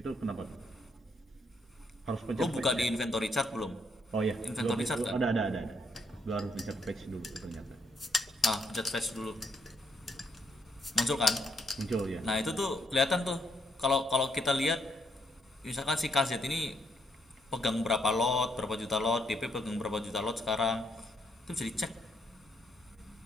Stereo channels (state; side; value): normal; both; correlation 0.74